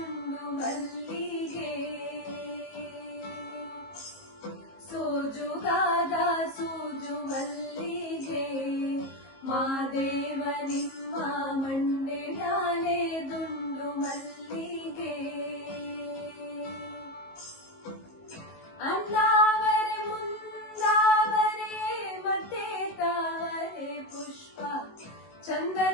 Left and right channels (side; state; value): right; late; 19 ms